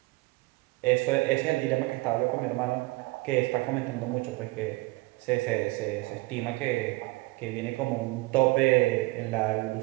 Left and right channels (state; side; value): quieter; left; 22.7 dB